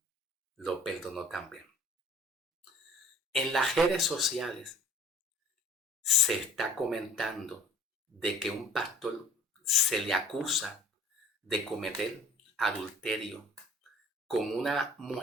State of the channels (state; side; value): normal; both; correlation 0.49